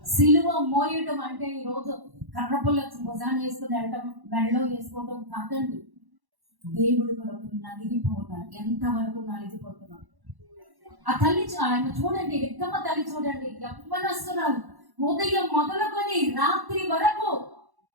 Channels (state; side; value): late; left; 1.1 ms